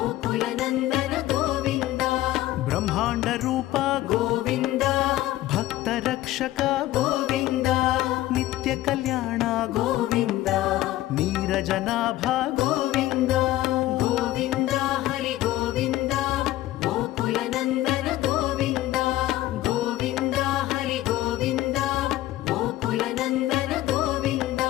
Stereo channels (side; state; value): right; quieter; 15.4 dB